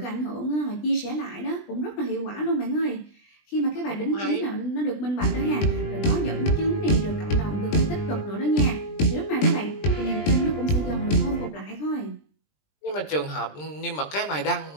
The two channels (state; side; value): late; right; 20 ms